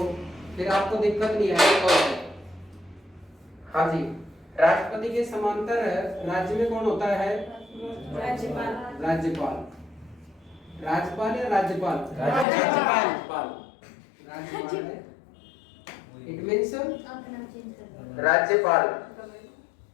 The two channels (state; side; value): drops out; right; at 12.5 s